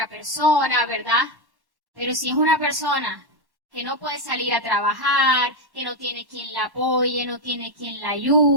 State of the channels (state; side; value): late; left; 1.1 ms